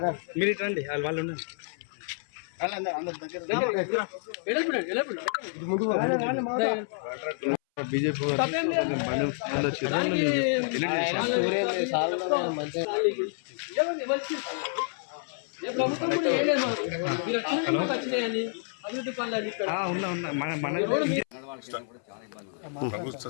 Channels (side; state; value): right; silent; 59 dB below the other